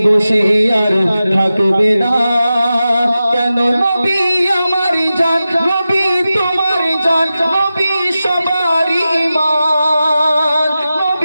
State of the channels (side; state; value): both; inverted; correlation -0.93